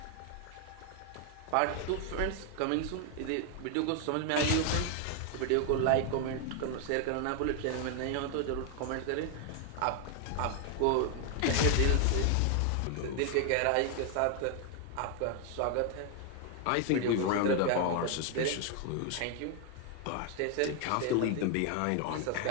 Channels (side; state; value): both; different; correlation 0.00